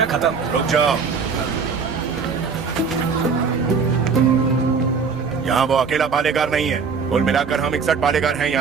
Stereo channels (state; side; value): quieter; left; 5.5 dB